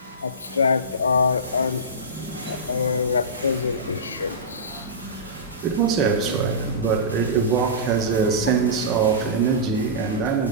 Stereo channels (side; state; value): both; normal; correlation -0.18